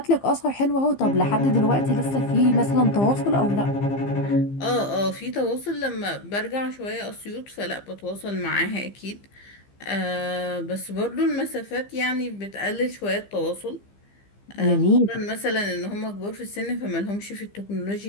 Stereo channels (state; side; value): late; right; 15 ms